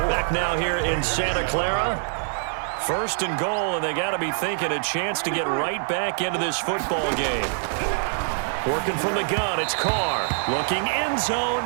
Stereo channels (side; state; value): left; silent; digital silence